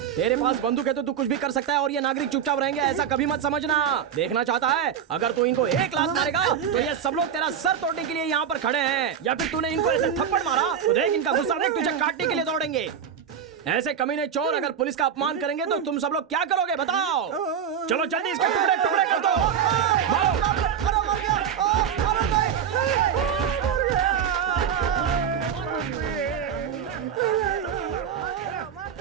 पास बंदूक है तो तू कुछ भी कर सकता है और ये नागरिक चुपचाप रहेंगे, ऐसा कभी मत समझना। देखना चाहता है? अगर तू इनको एक लात मारेगा तो ये सब लोग तेरा सर तोड़ने के लिए यहाँ पर खड़े हैं, या फिर तूने इनको ऐसे थप्पड़ मारा तो देख इनका गुस्सा देख, तुझे काटने के लिए दौड़ेंगे। ऐसे कमीने चोर अगर पुलिस का अपमान करेंगे तो तुम सब लोग क्या करोगे बताओ? चलो जल्दी इसके टुकड़े टुकड़े कर दो। मारो।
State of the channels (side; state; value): left; quieter; 8.2 dB